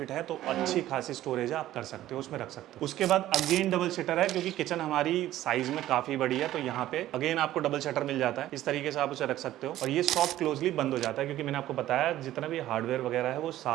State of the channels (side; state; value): left; quieter; 14.0 dB